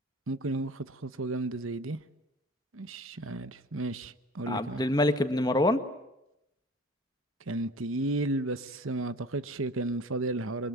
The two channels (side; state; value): both; normal; correlation 0.44